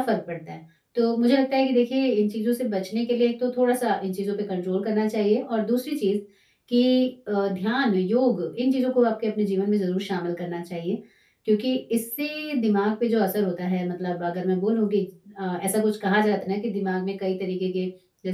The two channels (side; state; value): both; identical; correlation 1.00